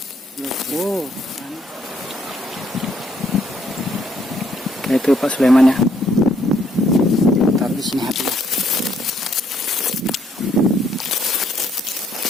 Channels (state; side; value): normal; both; correlation 0.69